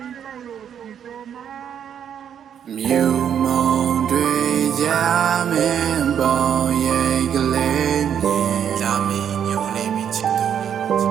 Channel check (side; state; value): left; quieter; 8.7 dB